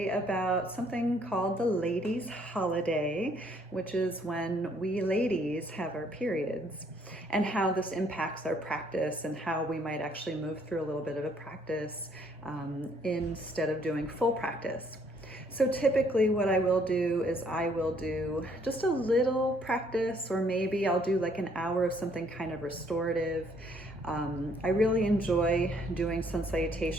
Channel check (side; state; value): both; normal; correlation 0.65